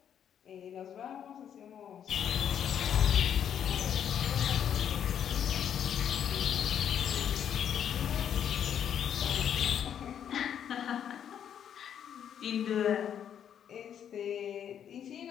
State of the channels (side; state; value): right; quieter; 9.0 dB